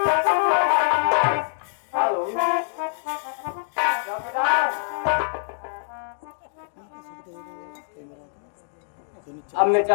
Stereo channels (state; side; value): silent; right; digital silence